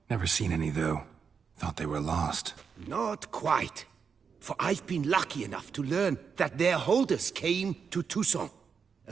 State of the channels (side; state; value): left; quieter; 6.2 dB